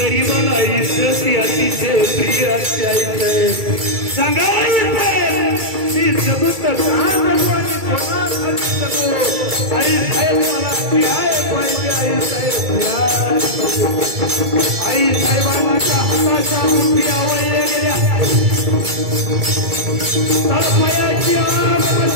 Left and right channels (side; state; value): left; late; 2.3 ms